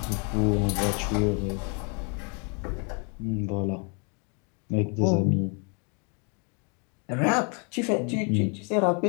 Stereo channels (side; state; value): right; quieter; 36.5 dB